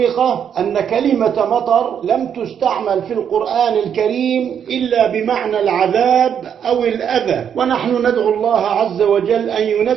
أن كلمة مطر لم تستعمل في القرآن الكريم إلا بمعنى العذاب أو الأذى، ونحن ندعو الله عز وجل أن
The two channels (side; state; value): left; quieter; 8.3 dB